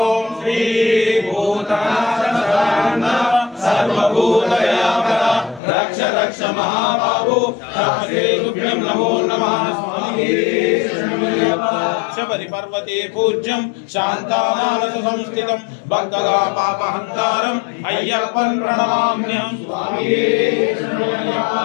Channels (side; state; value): right; drops out; at 5.6 s